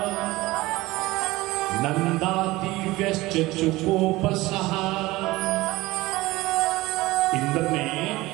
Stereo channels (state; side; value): quieter; left; 19.5 dB